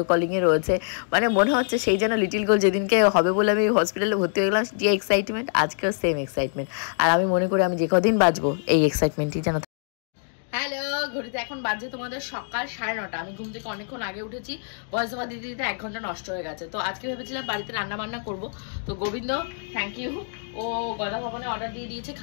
কলিংয়ে রয়েছে। মানে মনে হচ্ছে সেই যেন লিটিল গোল্ড যেদিনকে হবে বলে আমি হসপিটালে ভর্তি হয়ে গেলাম, যে এক্সাইটমেন্ট আজকেও সেম এক্সাইটমেন্ট। আর আমি মনে করি আমি যে কদিন বাঁচবো এই এক্সাইটমেন্টই যেন। হ্যালো, ঘড়িতে এখন বাজে তোমাদের সকাল 9:30। আমি ঘুম থেকে অনেকক্ষণ আগে উঠেছি, ভয়েস ওভার দিতে দিতে 1 ঘন্টা নষ্ট হয়ে গেছে। তো আজকে ভেবেছিলাম বাড়িতে রান্না বান্না করবো। তো গোবিন্দ থ্যাংক ইউ, ও গদা ভবনে অর্ডার দিয়ে দিয়েছে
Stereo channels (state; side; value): silent; right; digital silence